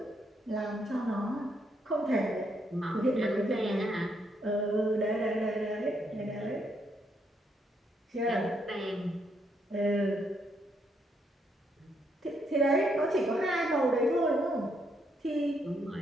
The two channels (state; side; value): normal; both; correlation 0.75